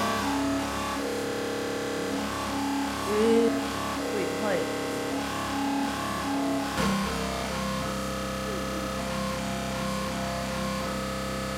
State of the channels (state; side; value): identical; both; correlation 1.00